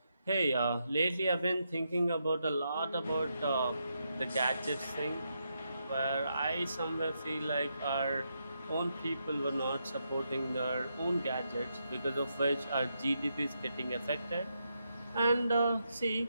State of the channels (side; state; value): both; inverted; correlation -0.82